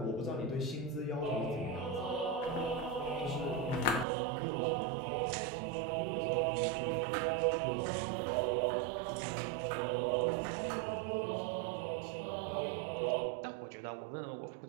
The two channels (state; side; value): drops out; left; at 4.0 s